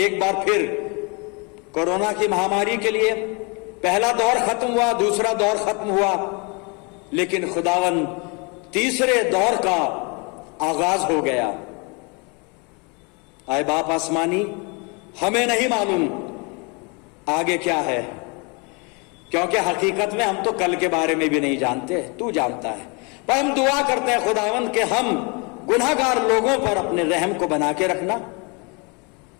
बार फिर कोरोना की महामारी के लिए। पहला दौर खत्म हुआ, दूसरा दौर खत्म हुआ, लेकिन खुदावन तीसरे दौर का आगाज हो गया। आए बाप आसमानी, हमें नहीं मालूम आगे क्या है, क्योंकि हकीकत में हम तो कल के बारे में भी नहीं जानते, तू जानता है। पर हम दुआ करते हैं खुदावन के हम गुनाहगार लोगों पर अपने रहम को बना के रखना,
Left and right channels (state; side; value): quieter; right; 31.5 dB